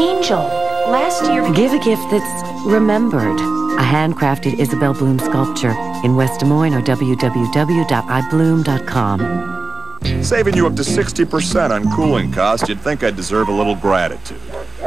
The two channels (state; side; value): quieter; left; 3.8 dB